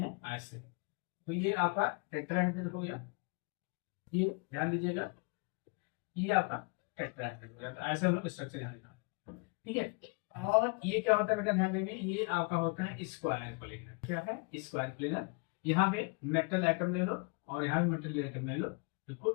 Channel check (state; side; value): quieter; right; 32.8 dB